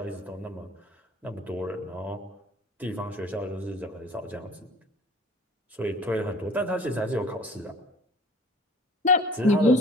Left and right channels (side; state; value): both; normal; correlation 0.47